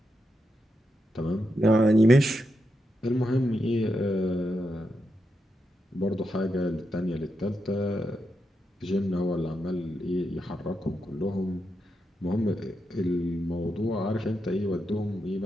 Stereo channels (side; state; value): both; normal; correlation 0.85